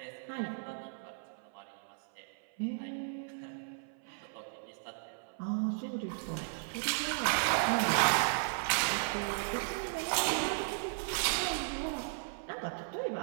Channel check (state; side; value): silent; left; 54 dB below the other